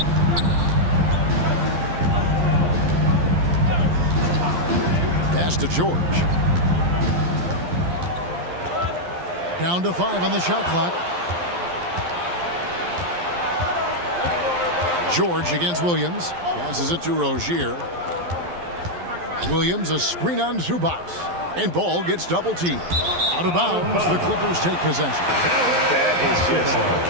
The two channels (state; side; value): late; left; 11 ms